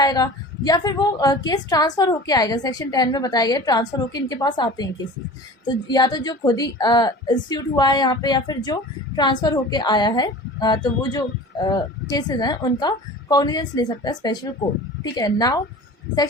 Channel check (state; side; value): normal; both; correlation 0.39